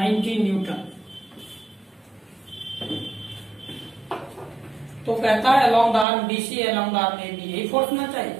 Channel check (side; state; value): left; drops out; at 6.1 s